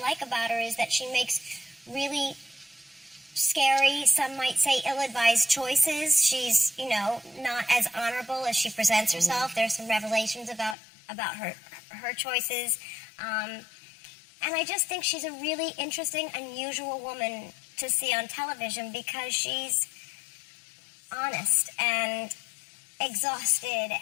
about her is that she makes really scary, some might say ill-advised choices. She's, not as honorable as she presents herself. Mm-hmm. There's some revelations about her choices. And I just think she's a really interesting, unusual woman to see on television because she's honest and exhausted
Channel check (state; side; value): drops out; right; at 10.8 s